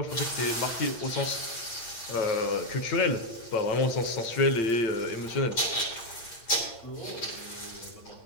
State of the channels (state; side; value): late; right; 8.8 ms